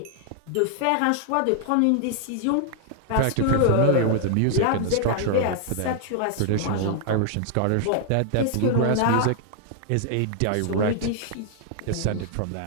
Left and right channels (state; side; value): different; both; correlation 0.00